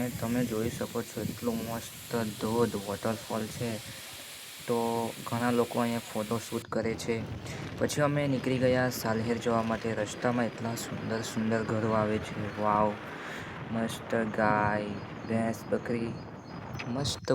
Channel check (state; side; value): identical; both; correlation 1.00